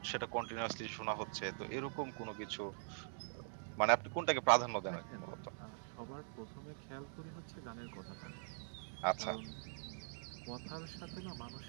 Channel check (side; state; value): left; silent; digital silence